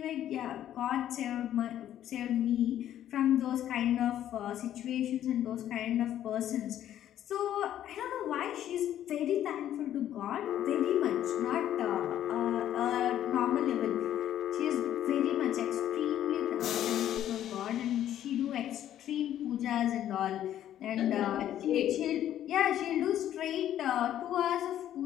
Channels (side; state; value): right; quieter; 11.5 dB